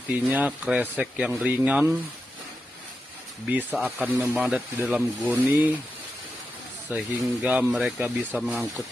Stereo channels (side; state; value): both; normal; correlation 0.89